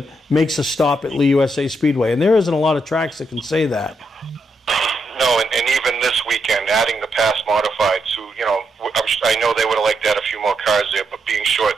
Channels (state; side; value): normal; both; correlation 0.80